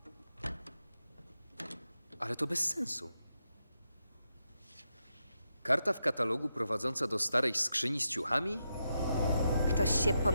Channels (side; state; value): both; inverted; correlation -0.85